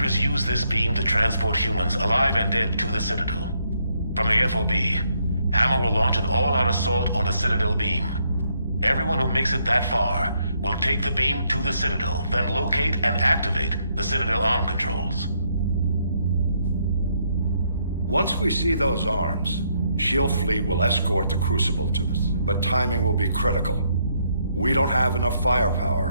use this beam to transport humans, alive and dead, to the Citadel. From the FOB, Hammer will launch an all-out assault on the Citadel beam. Everyone who makes it that far will take the beam to the Citadel, then locate and activate the Citadel arm controls. Once we see those arms, SHIELD fleet will escort the Crucible to the... But timing will be critical. We don't have enough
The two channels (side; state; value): both; inverted; correlation -0.74